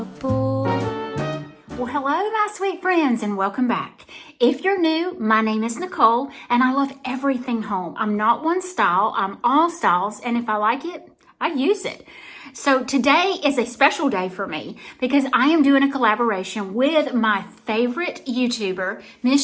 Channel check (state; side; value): identical; both; correlation 1.00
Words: bore. Well, hello, my sweet friends, and welcome back. If you're new, my name is Nicole, and I love everything home. I'm not one style, I'm all styles, and if I like it, I use it. So today is a special day for me because I am doing a collaboration with my favorite YouTuber,